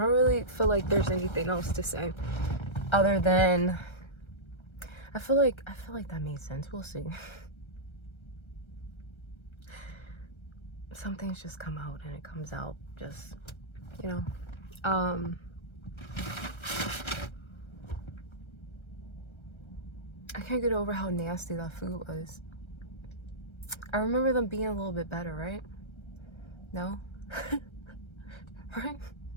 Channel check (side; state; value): right; late; 1.3 ms